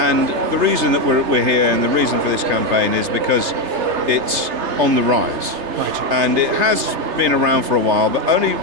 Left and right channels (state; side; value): late; left; 3.3 ms